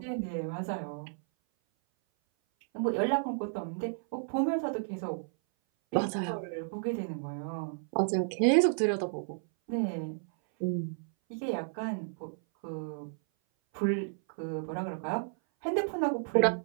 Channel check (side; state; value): left; silent; 56 dB below the other